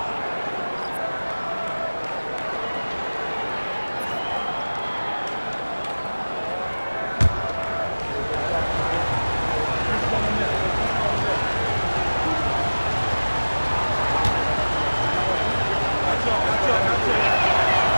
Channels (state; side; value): inverted; both; correlation -1.00